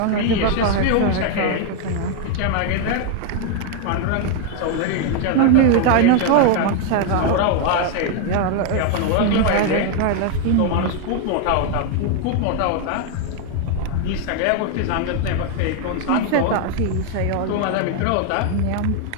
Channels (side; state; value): both; different; correlation 0.00